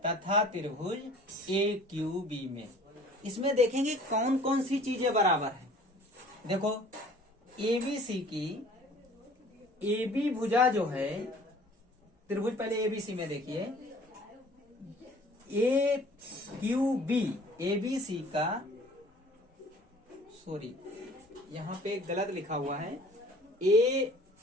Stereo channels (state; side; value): normal; both; correlation 0.51